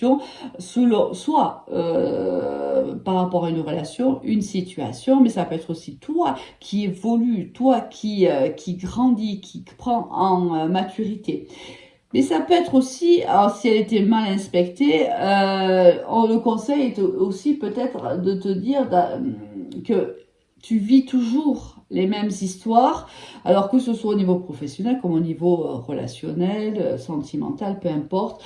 soit par rapport à une relation, une situation, mais ça peut être aussi toi qui évolue, toi qui grandit, qui prend en maturité. Mais ça peut être aussi, alors si elle était mal inspectée, le conseil est aussi peut-être de te dire que tu vis toujours les mêmes histoires, alors que ce soit au niveau professionnel comme au niveau relationnel, sentimental, peu importe.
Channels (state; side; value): identical; both; correlation 1.00